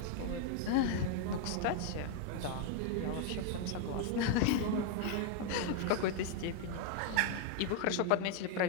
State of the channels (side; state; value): both; different; correlation 0.00